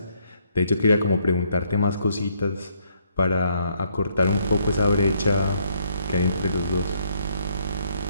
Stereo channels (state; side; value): inverted; both; correlation -0.70